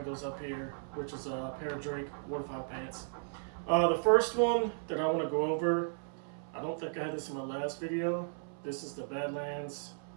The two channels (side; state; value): left; silent; 54 dB below the other